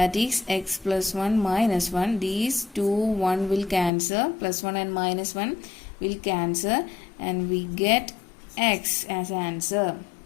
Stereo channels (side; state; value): right; drops out; at 3.9 s